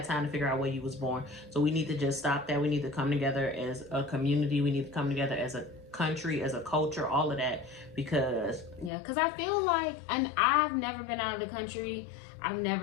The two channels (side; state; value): right; drops out; at 8.9 s